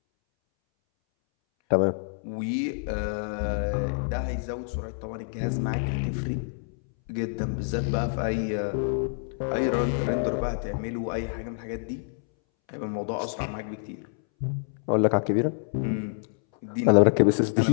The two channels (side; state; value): right; silent; 60 dB below the other